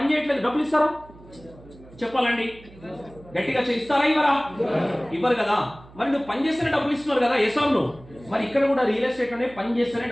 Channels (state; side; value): noise; right; hum, 22 dB below the sound